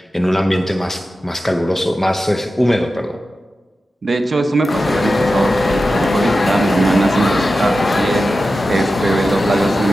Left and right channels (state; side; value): normal; both; correlation 0.93